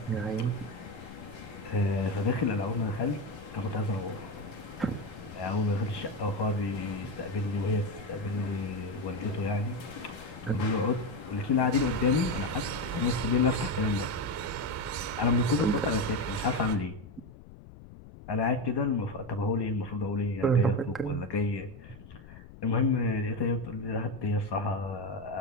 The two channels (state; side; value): noise; left; rumble, 17 dB below the sound